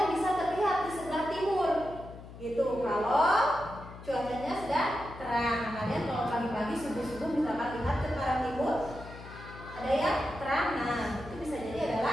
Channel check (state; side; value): noise; left; hum, 15 dB below the sound